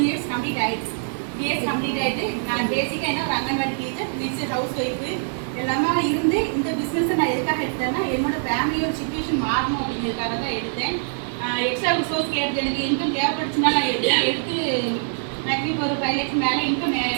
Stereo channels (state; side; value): silent; left; 63 dB below the other